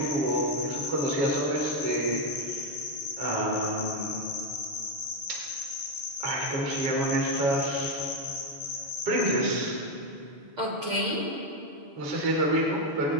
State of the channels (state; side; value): late; left; 6.5 ms